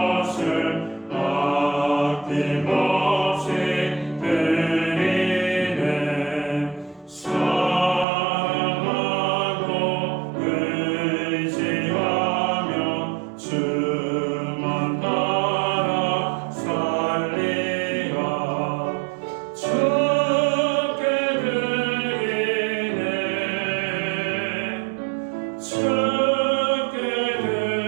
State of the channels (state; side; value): drops out; left; at 8.1 s